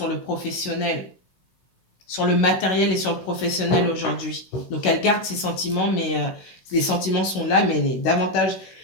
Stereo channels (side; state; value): right; late; 16 ms